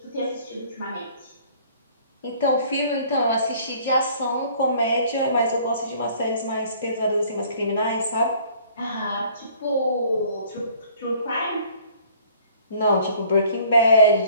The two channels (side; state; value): both; inverted; correlation -0.55